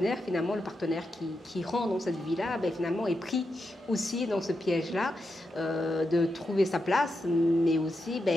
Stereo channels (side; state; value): both; normal; correlation 0.86